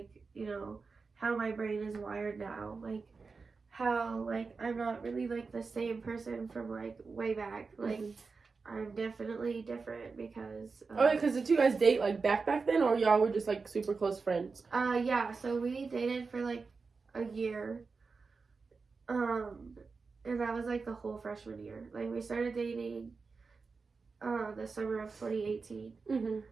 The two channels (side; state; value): left; quieter; 4.5 dB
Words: you know, how my brain is wired now, like how like I'm not really like the same person from like way back, like I'm definitely different because Oh, because did you guys date like back then, or y'all were just like super close friends? Yeah, so we dated for like a year, and that was like the whole freshman year. Like we started dating the summer of 2018, Mm-hmm.